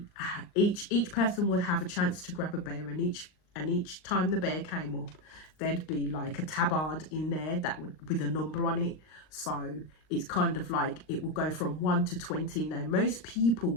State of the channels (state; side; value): late; right; 39 ms